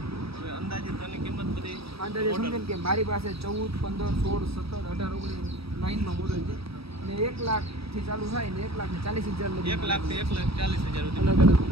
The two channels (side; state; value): left; late; 0.77 ms